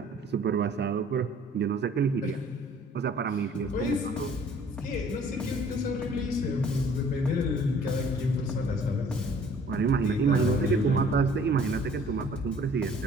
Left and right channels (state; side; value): normal; both; correlation 0.54